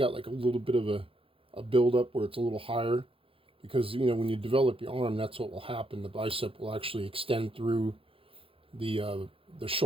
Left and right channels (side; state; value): left; late; 0.27 ms